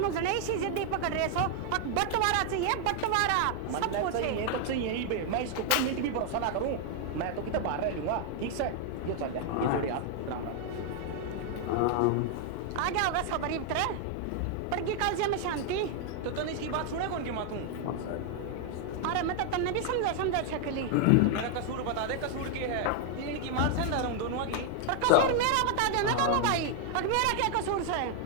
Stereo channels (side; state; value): both; different; correlation 0.00